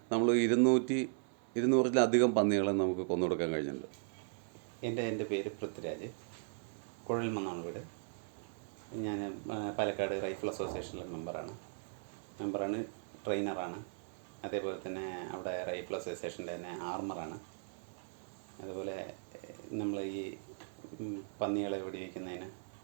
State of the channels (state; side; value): silent; left; 53 dB below the other